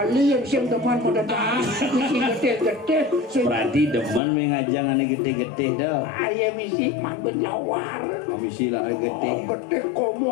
yang siang teman pada dah. Misi gede-gede. Berarti demen mengajang ane gede-gede dah. Ayah misi man berlawar. Misi lah gede. Gede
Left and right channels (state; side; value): drops out; right; at 4.2 s